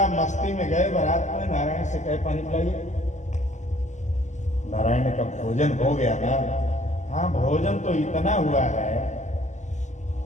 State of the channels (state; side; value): late; right; 0.34 ms